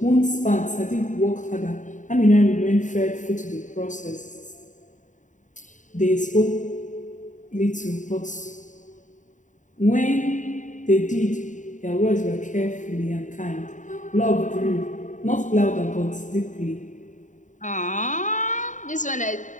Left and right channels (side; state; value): right; late; 0.36 ms